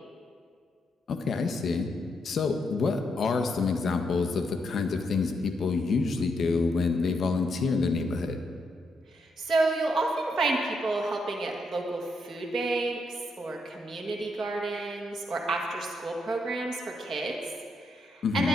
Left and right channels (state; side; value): normal; both; correlation 0.79